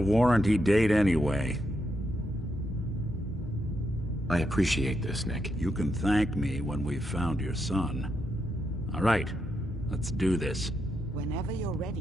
date anyway. I appreciate this, Nick. You can thank me when we've found your son. All right, let's do this. Whenever you're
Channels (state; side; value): normal; both; correlation 0.82